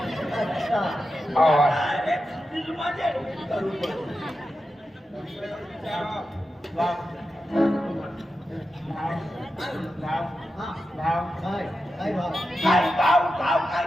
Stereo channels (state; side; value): normal; both; correlation 0.90